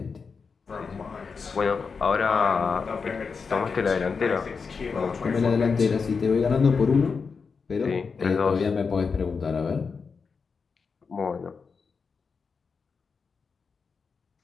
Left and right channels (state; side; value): quieter; right; 5.3 dB